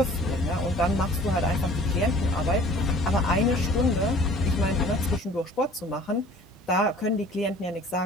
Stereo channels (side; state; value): both; normal; correlation 0.49